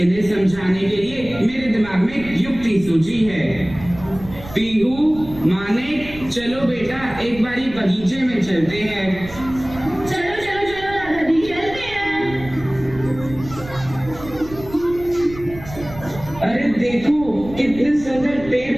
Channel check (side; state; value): right; noise; rumble, 15 dB below the sound